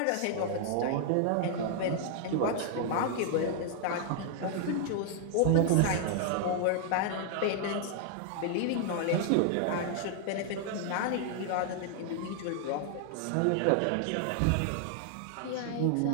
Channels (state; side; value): different; both; correlation 0.00